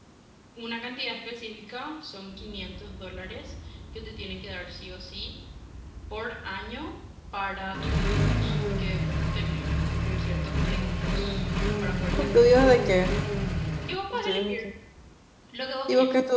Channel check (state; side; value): identical; both; correlation 1.00